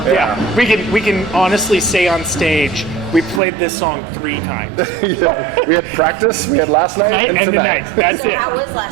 Yeah. We can honestly say on stage, we played this song 3 times. Yeah. We had practice, we had last night and tonight. That's so it. how was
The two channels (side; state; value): left; drops out; at 3.4 s